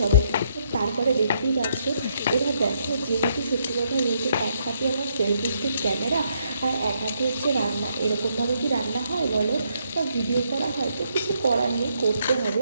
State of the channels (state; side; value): inverted; both; correlation -0.74